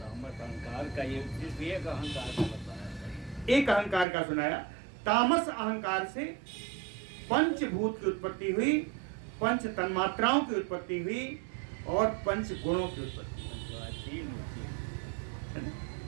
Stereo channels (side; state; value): left; drops out; at 4.0 s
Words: अहंकार का ये एक अहंकार का बताया, एक अहंकार का सुनाया। तामस अहंकार से पंचभूत की उत्पत्ति हुई, पंच तन्मात्राओं की उत्पत्ति हुई, और पंच गुणों की उत्पत्ति हुई।